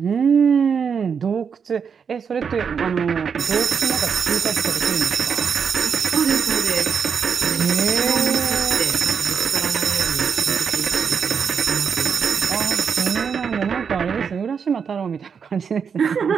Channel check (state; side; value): quieter; left; 6.6 dB